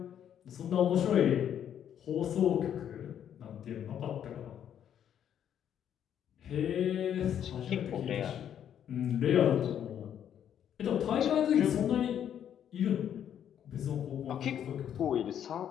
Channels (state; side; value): quieter; right; 9.5 dB